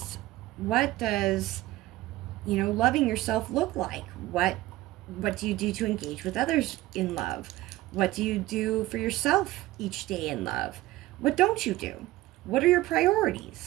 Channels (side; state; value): left; quieter; 17.1 dB